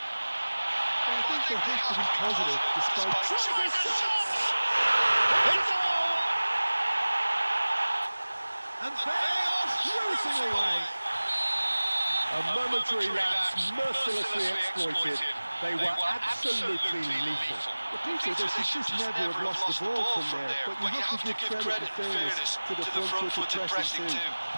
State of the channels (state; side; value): inverted; both; correlation -1.00